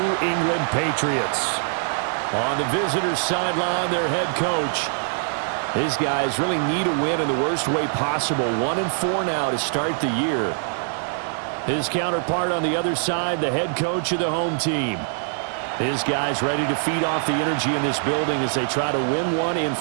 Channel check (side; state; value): left; silent; 63 dB below the other